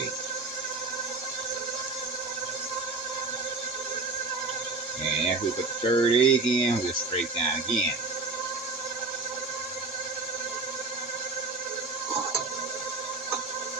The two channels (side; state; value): left; quieter; 3.6 dB